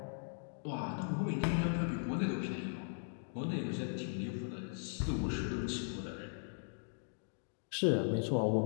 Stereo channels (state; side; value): silent; right; digital silence